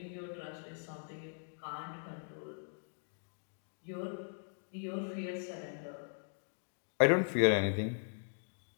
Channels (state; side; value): silent; right; digital silence